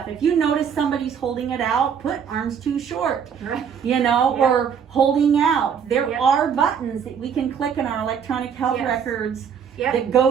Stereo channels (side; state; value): left; quieter; 7.4 dB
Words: If you notice somebody's holding it out, put arms too short, Right. you know, Yeah. or holding out. There Yep. are buttons that we can click in our electronic health Yes. records Yep. that